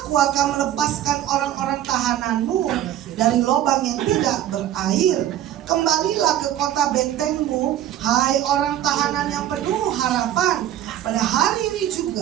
akan melepaskan orang-orang tahananmu dari lubang yang tidak berair. Kembalilah ke kota bentengmu, hai orang tahanan yang penuh harapan. Pada hari ini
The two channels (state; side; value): quieter; left; 11.9 dB